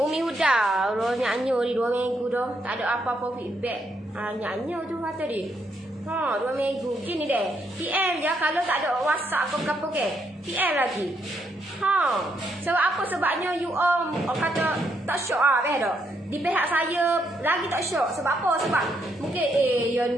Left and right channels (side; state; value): both; normal; correlation 0.76